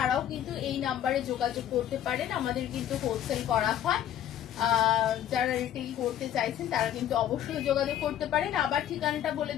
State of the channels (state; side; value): quieter; right; 11.0 dB